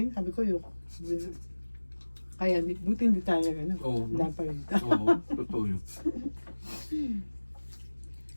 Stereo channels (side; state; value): both; inverted; correlation -1.00